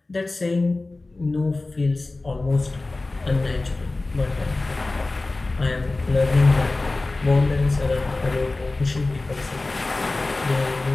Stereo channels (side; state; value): right; quieter; 3.2 dB